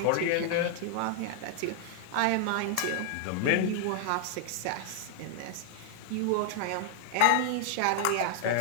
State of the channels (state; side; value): different; both; correlation -0.01